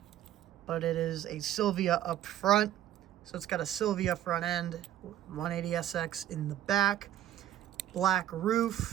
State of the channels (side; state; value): left; quieter; 12.2 dB